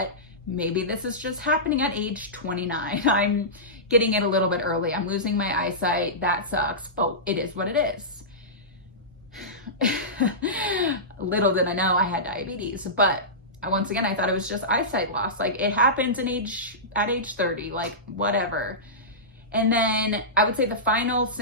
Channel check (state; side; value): normal; both; correlation -0.17